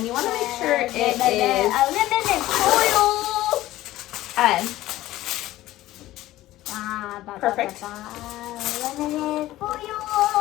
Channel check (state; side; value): quieter; right; 15.8 dB